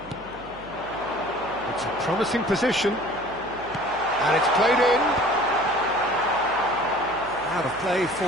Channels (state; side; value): noise; right; hum, 20 dB below the sound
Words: It's a promising position, and it's played in. Out of play for